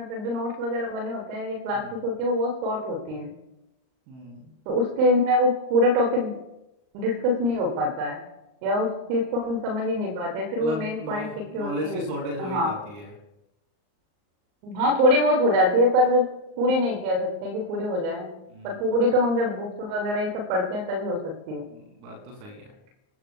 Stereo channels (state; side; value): late; left; 38 ms